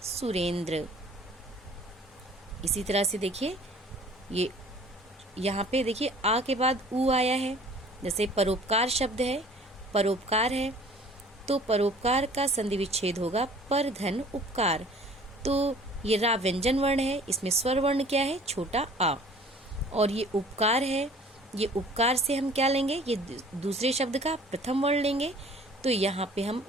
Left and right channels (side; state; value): both; normal; correlation 0.50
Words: सुरेंद्र। इसी तरह से देखिए, ये यहाँ पे देखिए आ के बाद ऊ आया है। जैसे परोपकार शब्द है, परोपकार है, तो परोपकार का संधि विच्छेद होगा पर धन उपकार। तो ये रा व्यंजन वर्ण है, इसमें स्वर वर्ण क्या है? छोटा आ, और ये उपकार है, ये उपकार से हम क्या लेंगे? ये दूसरे शब्द का प्रथम वर्ण लेंगे। तो यहाँ पे हम